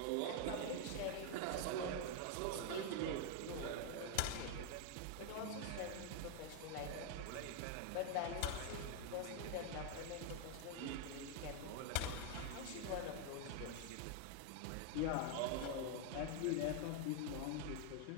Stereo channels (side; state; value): both; different; correlation 0.00